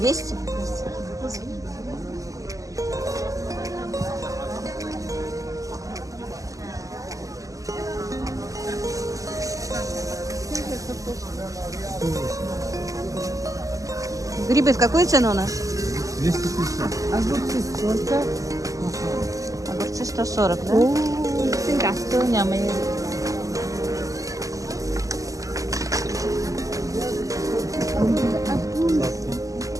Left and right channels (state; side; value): late; left; 0.16 ms